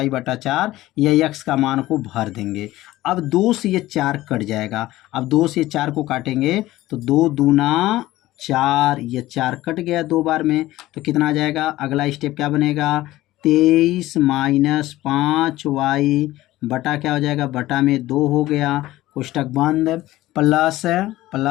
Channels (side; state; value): right; quieter; 16.5 dB